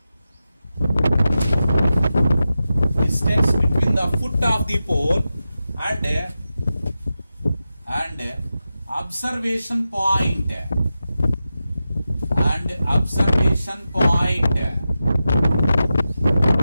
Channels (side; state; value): both; inverted; correlation -0.92